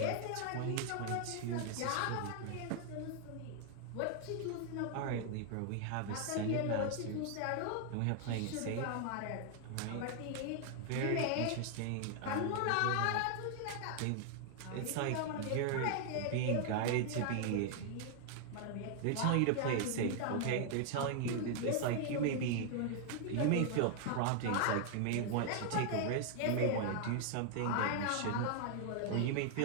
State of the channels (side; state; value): both; different; correlation 0.00